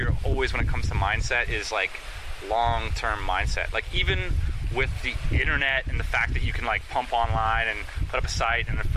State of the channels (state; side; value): identical; both; correlation 1.00